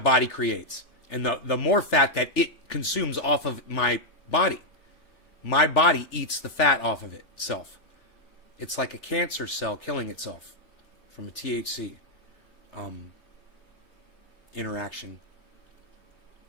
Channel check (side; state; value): right; late; 3.4 ms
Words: creates, and the more fat that it consumes off of my body eats the fat off of itself. It's like a cancer cell killing itself from a THC interaction.